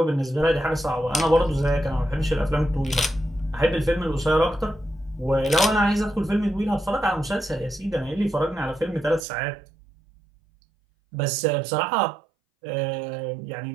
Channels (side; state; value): left; drops out; at 9.2 s